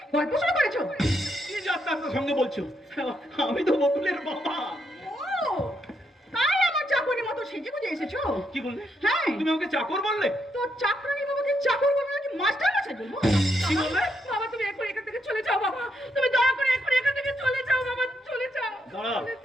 গল্প শুরু করেছো? কি যাত্রার সঙ্গে বলছো? আমি তো বকুলের বাবা। ও, তাই আমার চাকরির মতো সেজে গুজে এসেছো? কি বললে? হ্যাঁ, তুমি আমাকে চাকর বললে? তো চাকরানি বাবাকে চাকর বলবো নাকি মাস্টার মশাই বলবো? কি বললে? বাবা তুমি এখন এখান থেকে চলে যাও বাবা। তুমি দয়া করে এখন এখান থেকে চলে যাও বাবা। চলে যাও। দাঁড়া চলে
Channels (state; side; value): normal; both; correlation 0.78